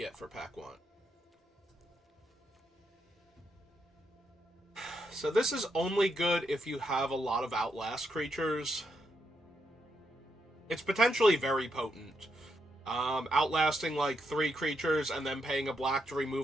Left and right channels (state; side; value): normal; both; correlation 0.80